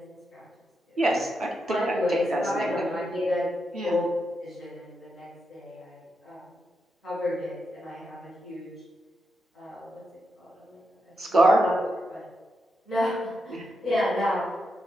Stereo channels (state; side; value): normal; both; correlation 0.85